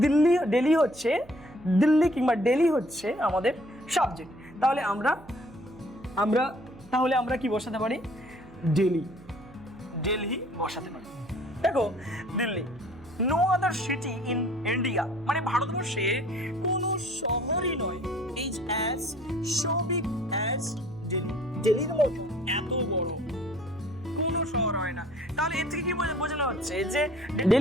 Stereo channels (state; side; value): noise; right; hum, 22 dB below the sound